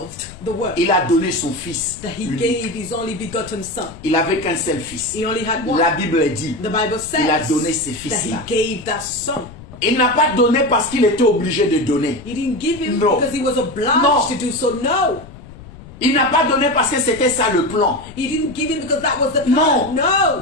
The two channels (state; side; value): noise; left; rumble, 18 dB below the sound